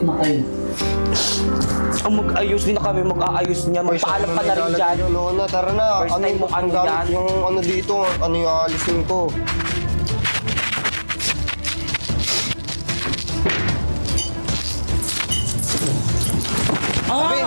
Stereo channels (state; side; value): inverted; both; correlation -1.00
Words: na kayo. ang mag-ayos din na kami, mag-aayos niya. Magpaalam ka na rin dyan. Lona, tara na. First time mo ano gamit yan? yung ano dito, ano yung aalisin ko.